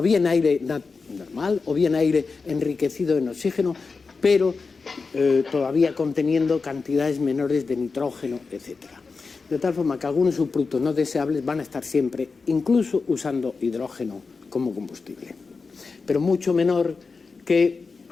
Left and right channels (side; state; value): right; quieter; 4.5 dB